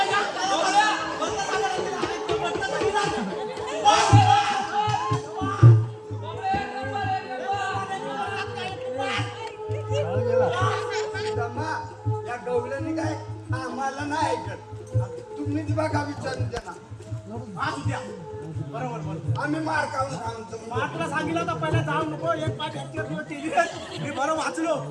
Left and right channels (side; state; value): both; identical; correlation 1.00